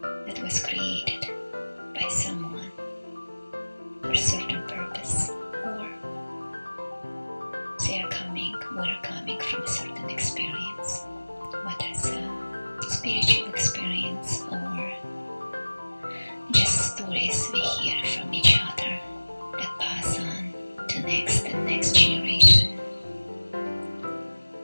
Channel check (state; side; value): inverted; both; correlation -1.00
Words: was created by someone for a certain purpose, or we're coming from a certain experience, whether it's a spiritual experience or just stories we hear from each other that pass on to next and next generation.